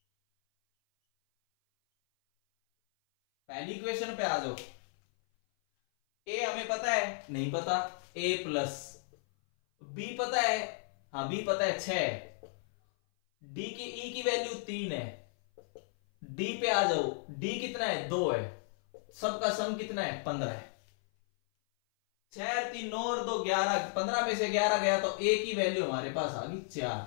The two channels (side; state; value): right; silent; 55 dB below the other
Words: पहली इक्वेशन पे आ जाओ। ए हमें पता है? नहीं पता। ए प्लस बी पता है? हाँ बी पता है 6। डी की ई की वैल्यू 3 है। डी पे आ जाओ, डी कितना है? 2 है। सबका सम कितना है? 15 है। 6 3 9 और 2 11, 15 पे से 11 गया तो ए की वैल्यू हमारे पास आ गई 4।